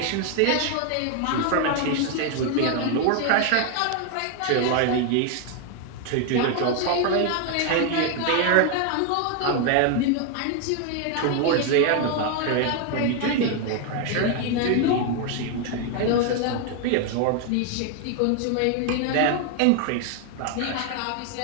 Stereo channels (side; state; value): both; different; correlation 0.01